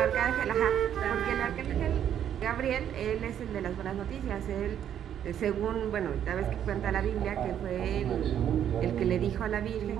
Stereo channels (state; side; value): quieter; left; 9.8 dB